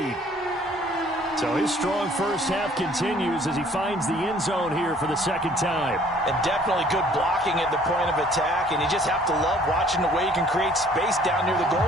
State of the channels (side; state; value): both; normal; correlation 0.57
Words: So his strong first half continues as he finds the end zone here for the second time. And definitely good blocking at the point of attack, and you just have to love watching the way he can create space down near the